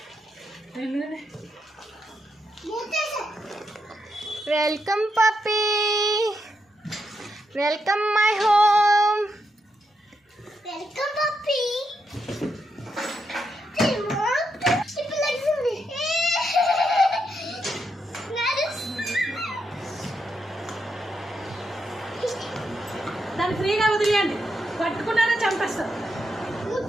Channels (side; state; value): both; normal; correlation 0.82